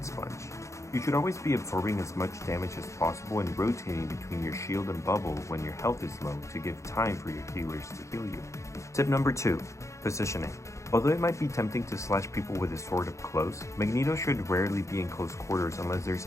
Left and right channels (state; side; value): late; right; 0.14 ms